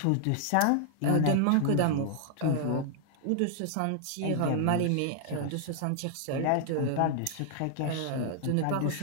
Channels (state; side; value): different; both; correlation 0.00